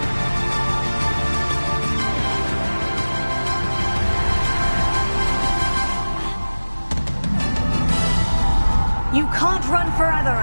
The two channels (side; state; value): both; inverted; correlation -1.00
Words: You can't run forever,